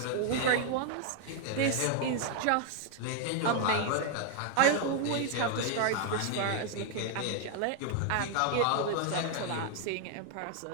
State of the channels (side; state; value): both; different; correlation 0.00